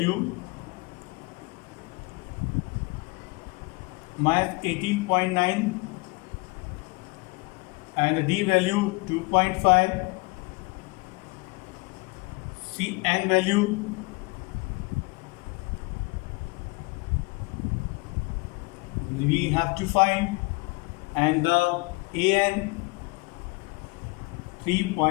minus 18.9 and the D value 2.5. C N value we have to find, and the AN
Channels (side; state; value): right; quieter; 27.2 dB